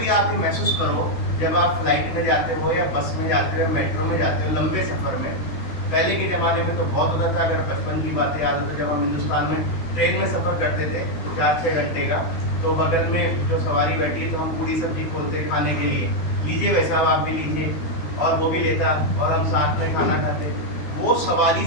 आप ये महसूस करो जब आप फ्लाइट में जाते हो या बस में जाते हो, मेट्रो में जाते हो, लंबे सफ़र में। पहले के ज़माने में तो बहुत होता था, अगर बचपन की बातें याद हो तो जब हम हिंदुस्तान में ट्रेन में सफ़र करते थे 4-6 घंटे का, तो बगल में जो सवारी बैठी है तो हम पूरी सब्जी खोलते खाने के लिए, लीजिए वैसा आप भी लीजिए, और वो भी लेता और हम साथ में खाना खाते। वो सवारी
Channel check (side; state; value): right; late; 13 ms